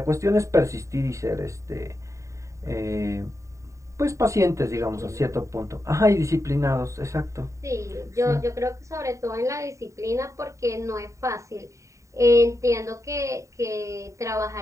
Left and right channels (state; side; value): late; left; 0.15 ms